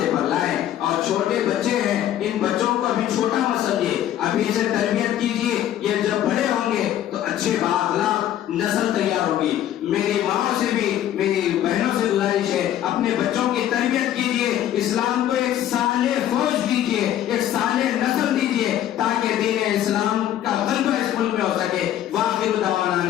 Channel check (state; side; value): quieter; right; 11.8 dB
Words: پر لائیں. اور چھوٹے بچے ہیں، ان بچوں کو ابھی چھوٹا مت سمجھیے، ابھی سے تربیت کیجیے. یہ جب بڑے ہوں گے تو اچھے بااخلاق نسل تیار ہوگی. میری ماں سے بھی، میری بہنوں سے گزارش ہے، اپنے بچوں کی تربیت کیجیے، اسلام کو ایک صالح فوج دیجیے، ایک صالح نسل دیجیے تاکہ دین اسلام کا غلبہ اس ملک میں ہو سکے. واخر دعوانا